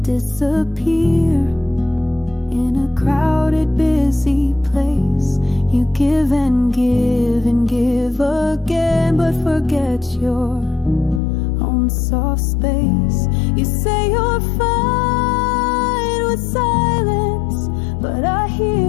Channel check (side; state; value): right; drops out; at 11.2 s